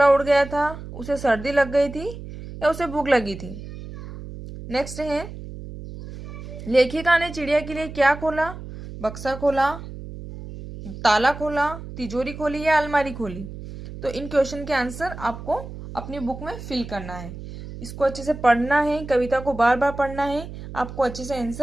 उड़ गया था, उसे सर्दी लग गई थी या उसे भूख लगी थी। नेक्स्ट है लेखिका ने चिड़िया के लिए क्या खोला, बक्सा खोला, ताला खोला, तिजोरी खोली या अलमारी खोली। तो इन क्वेश्चन के आंसर आपको अपनी बुक में फिल करना है। इसको अच्छे से पढ़ना है, कविता को बार बार पढ़ना है, आपको अच्छे से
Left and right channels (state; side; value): noise; right; hum, 12 dB below the sound